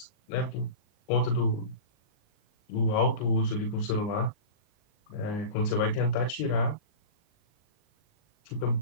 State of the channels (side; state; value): right; late; 39 ms